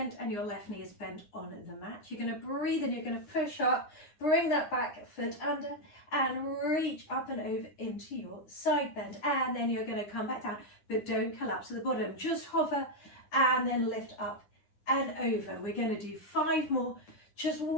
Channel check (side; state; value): right; late; 9.8 ms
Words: and your left knee is bent on the mat. You're going to breathe and you're going to push up, bring that back foot under and reach up and over into your side bend. And then you're going to come back down, but don't collapse to the bottom. Just hover and then lift up and over. We're going to do 5 more, just